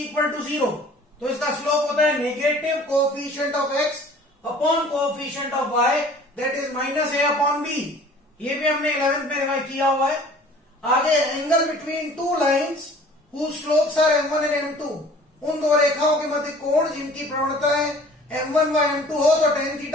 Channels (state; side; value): normal; both; correlation 0.49